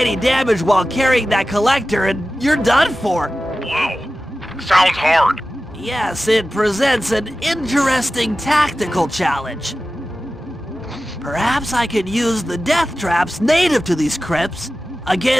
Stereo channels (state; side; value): normal; both; correlation 0.95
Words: damage while carrying that collector and you're done for. Wow, sounds hard. Yes, it presents an interesting tactical challenge. Perhaps I could use the death traps native to these crypts